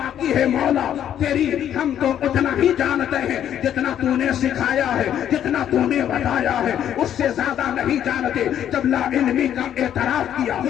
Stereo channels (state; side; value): quieter; right; 10.2 dB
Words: ہے مولا تیری. ہم تو اتنا ہی جانتے ہیں جتنا تو نے سکھایا ہے، جتنا تو نے بتایا ہے، اس سے زیادہ نہیں جانتے. جب لا علمی کا اعتراف کیا،